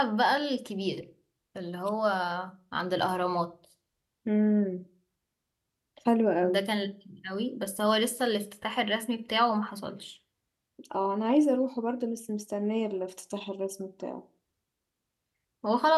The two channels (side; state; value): both; identical; correlation 1.00